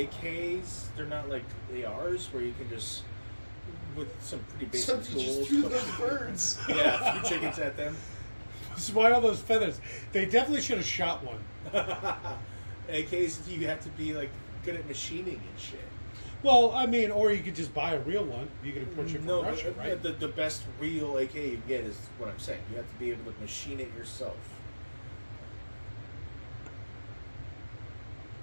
they're not like ARs where you can just with some pretty basic Somebody tools. just threw those birds. Yeah, a few chickens at them. Why all those feathers? They definitely should have shot one. AKs, you have to be like good at machining and shit. Well, I mean, or you could just buy a real one. You could import it from No, Russia, but right? the best real AK you can get is what I'm saying. You have to be able to machine it yourself.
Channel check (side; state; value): both; inverted; correlation -1.00